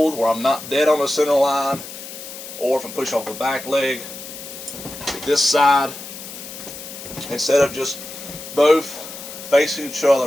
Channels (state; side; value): noise; left; hiss, 12 dB below the sound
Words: where I'm not dead on the center line, or if I'm pushing off the back leg to this side, instead of just both facing each